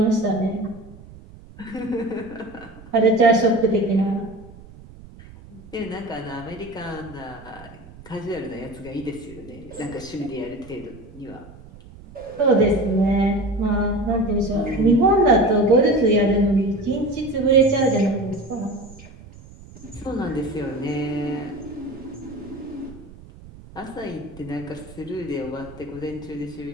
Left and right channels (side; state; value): right; noise; rumble, 19 dB below the sound